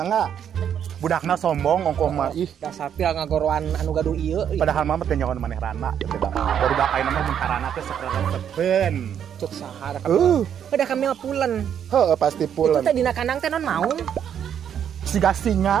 Budakna sombong ongkoh mah ih. Dasar pil ngagoroan anu gaduh ieu. Padahal mah teh nyaon maneh rana. Baru bakaina mah mun karana teh sok resepeun. Cuk sahar. Udah kami pulen. Heeh pasti pulen. Itu teh dina kandang teh non naon? Siga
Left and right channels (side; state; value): left; quieter; 8.9 dB